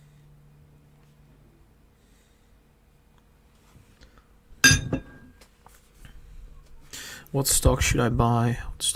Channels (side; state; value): both; identical; correlation 1.00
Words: What stock should I buy? What